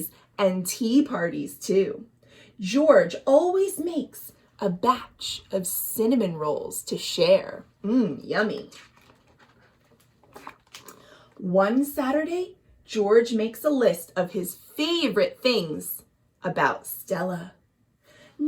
and tea parties too. George always makes a batch of cinnamon rolls to share. Yummy. One Saturday, George makes a list of his favorite things about Stella.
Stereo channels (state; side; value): identical; both; correlation 1.00